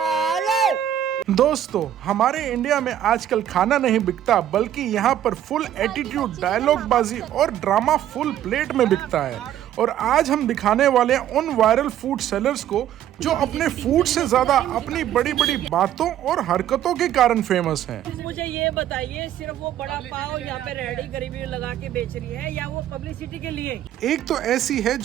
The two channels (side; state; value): left; quieter; 11.2 dB